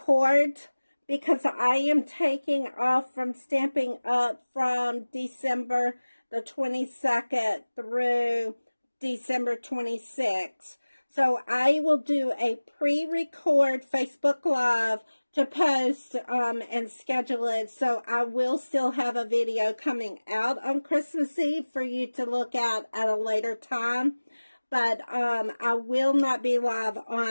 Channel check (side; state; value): both; inverted; correlation -1.00